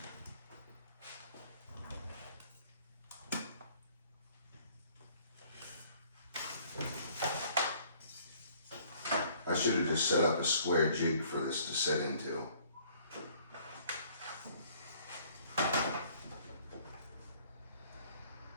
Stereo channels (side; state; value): both; inverted; correlation -0.58